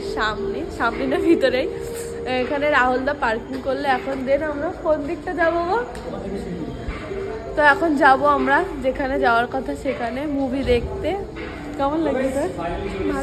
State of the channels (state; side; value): identical; both; correlation 1.00